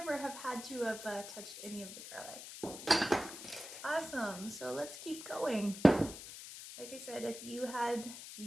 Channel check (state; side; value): noise; left; hiss, 11 dB below the sound